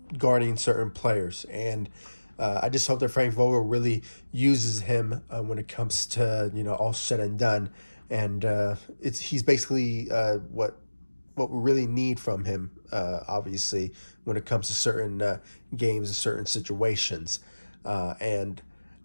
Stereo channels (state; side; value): inverted; both; correlation -1.00